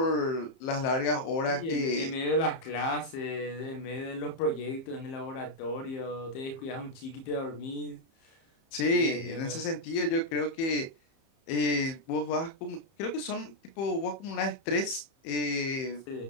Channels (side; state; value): right; late; 30 ms